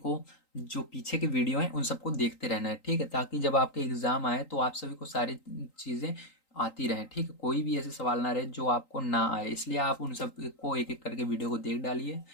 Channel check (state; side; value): late; right; 3.8 ms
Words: जो पीछे के वीडियो हैं उन सबको देखते रहना है। ठीक है, ताकि जब आपके एग्जाम आए तो आप सभी को सारी चीज़ें आती रहें। ठीक है, कोई भी ऐसे सवाल ना रहे जो आपको ना आए, इसलिए आप उन सब को एक एक करके वीडियो को देख डालिए।